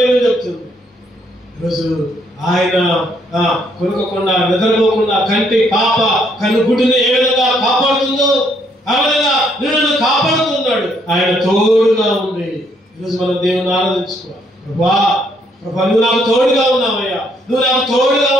చెప్తుంది. ఈరోజు ఆయన కొనుక్కోకుండా, నిద్రపోకుండా కంటి పాప కన్నుగుడ్డుని ఏ విధంగా కాపాడుతుందో ఆ విధంగా నిన్ను కాపాడుతున్నాడు. ఆయన తోడుగా ఉంది. ఈరోజు మనం దేవుని ఆరాధించుకోవాలి. ప్రభా నువ్వు నాకు తోడుగా ఉన్నావయ్యా, నువ్వు నాకు తోడుగా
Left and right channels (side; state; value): both; normal; correlation 0.70